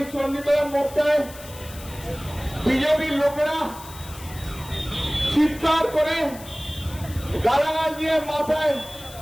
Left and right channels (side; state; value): left; noise; hiss, 17 dB below the sound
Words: চণ্ডীতলার মোড়টায়। বিজেপির লোকেরা চিৎকার করে গালাগাল দিয়ে মাথায়